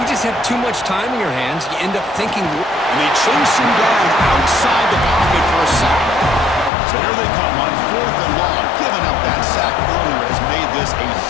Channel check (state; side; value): drops out; right; at 6.7 s